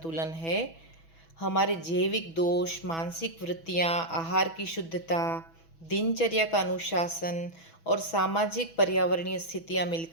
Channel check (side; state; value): right; late; 6.1 ms